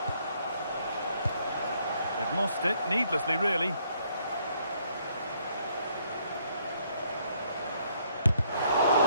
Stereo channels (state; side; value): inverted; both; correlation -0.69